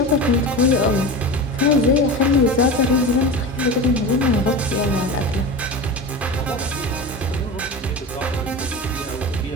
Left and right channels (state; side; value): normal; both; correlation 0.28